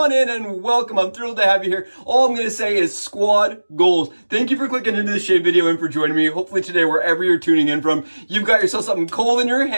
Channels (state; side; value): inverted; both; correlation -1.00